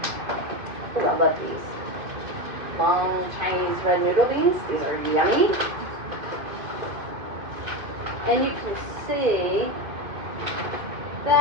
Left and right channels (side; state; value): left; late; 2.5 ms